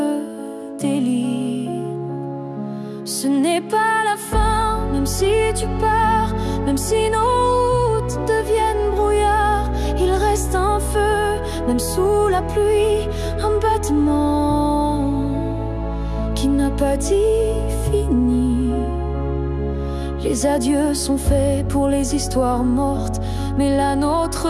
délie. Ce n'est pas la fin, même si tu pars, même si nos routes deviennent brouillard. Il reste un feu, même sous la pluie, un battement qui n'a pas dit fini. Les adieux sont faits pour les histoires mortes, mais la nôtre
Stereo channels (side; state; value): both; identical; correlation 1.00